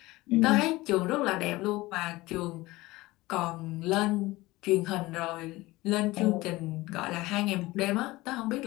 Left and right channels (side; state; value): right; quieter; 19.8 dB